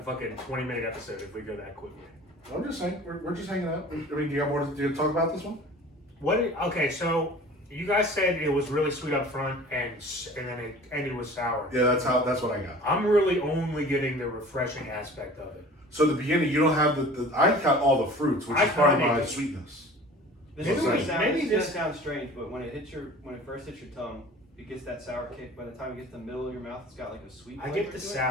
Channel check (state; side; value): normal; both; correlation 0.44